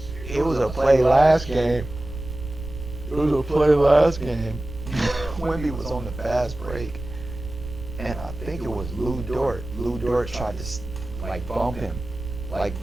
It was a play last game. It was a play last game. Wemby was on the fast break, and I think it was Lou Dort. Lou Dort tried to like bump him. Like,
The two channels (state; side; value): noise; right; rumble, 11 dB below the sound